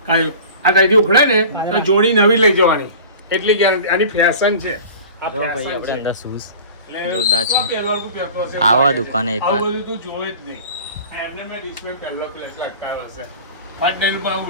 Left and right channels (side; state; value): both; inverted; correlation -0.40